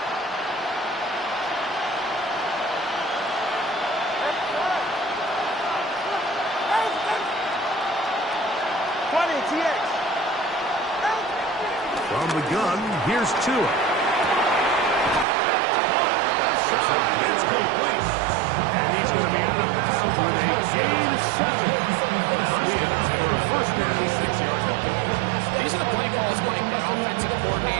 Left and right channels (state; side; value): drops out; left; at 15.2 s